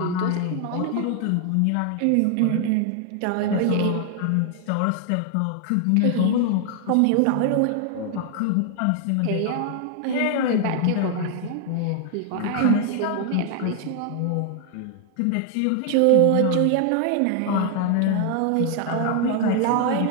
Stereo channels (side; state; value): both; different; correlation 0.00